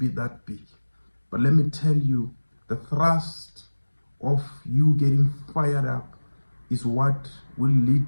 that big. But let me tell you, the thrust of you getting fired up is what will lead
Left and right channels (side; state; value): both; inverted; correlation -1.00